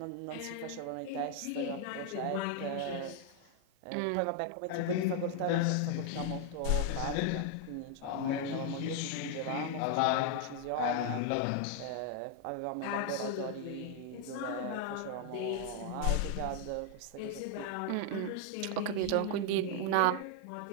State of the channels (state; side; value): different; both; correlation 0.00